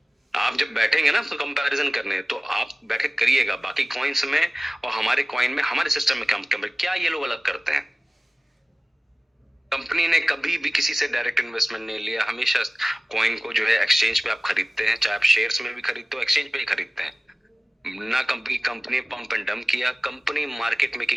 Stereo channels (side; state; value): both; normal; correlation 0.97